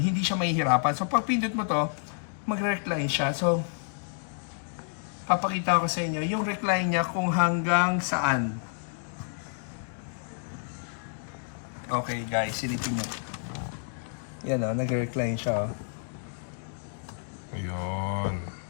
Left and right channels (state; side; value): silent; right; digital silence